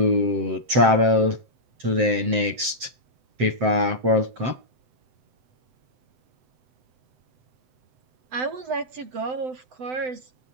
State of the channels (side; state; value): left; late; 7.7 ms